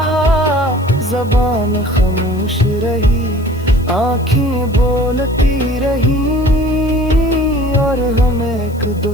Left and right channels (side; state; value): left; noise; hiss, 25 dB below the sound